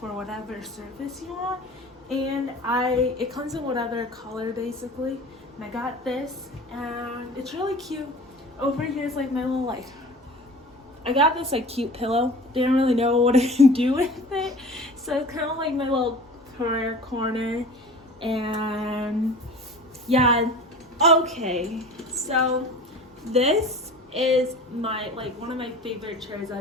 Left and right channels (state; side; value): normal; both; correlation 0.40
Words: whatever surface you want, and it comes in whatever color basically. And I got this, and it's really cute. Over here is like my little I got this like cute pillow. Didn't really know what to do with it, so it's kind of like my little prayer corner. And yeah, okay, so this is my one of my favorite chairs